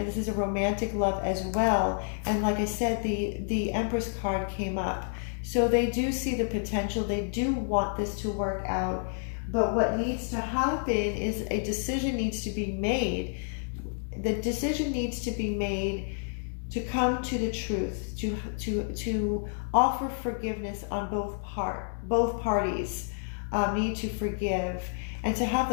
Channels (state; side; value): silent; right; digital silence